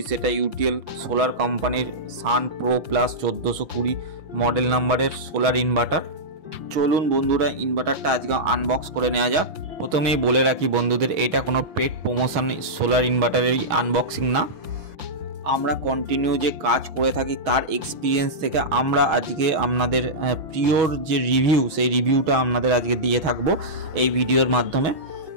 সেটা ইউটিএল সোলার কোম্পানির সান প্রো প্লাস 1420 মডেল নাম্বারের সোলার ইনভার্টার। চলুন বন্ধুরা ইনভার্টারটা আজকে আনবক্স করে নেওয়া যাক। প্রথমেই বলে রাখি বন্ধুদের, এটা কোনো পেড প্রমোশন সোলার ইনভার্টারের আনবক্সিং না। আমরা কন্টিনিউ যে কাজ করে থাকি তার এক্সপিরিয়েন্স থেকে আমরা আজকে আপনাদের প্রিয়র যে রিভিউ সেই রিভিউটা আপনাদের আজকে দিয়ে থাকবো এই ভিডিওর মাধ্যমে।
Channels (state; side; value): late; left; 6.2 ms